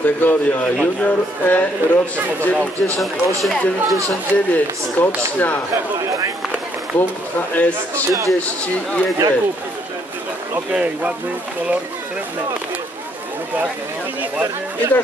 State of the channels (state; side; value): normal; both; correlation 0.70